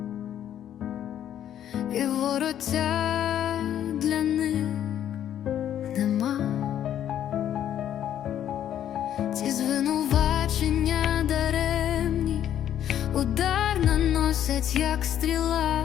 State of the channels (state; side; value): quieter; right; 10.6 dB